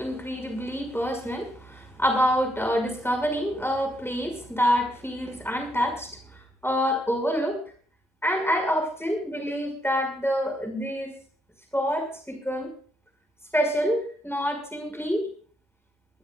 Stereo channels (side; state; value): both; normal; correlation 0.76